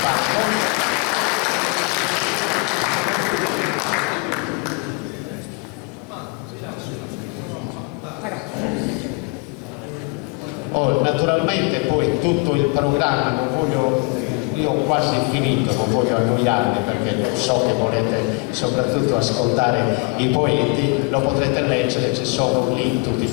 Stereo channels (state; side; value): quieter; right; 29.9 dB